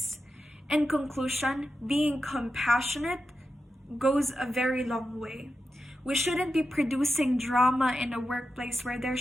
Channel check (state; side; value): normal; both; correlation 0.90